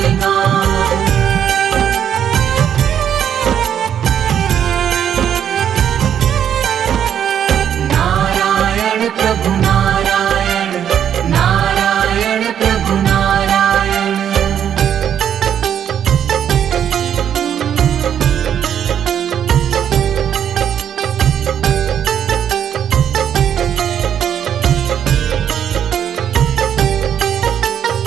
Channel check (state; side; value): quieter; left; 9.2 dB